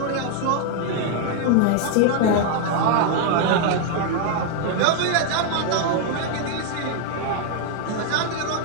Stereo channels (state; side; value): different; both; correlation 0.00